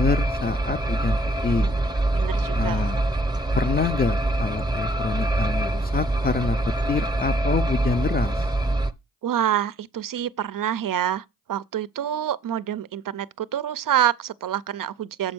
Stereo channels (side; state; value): both; normal; correlation 0.59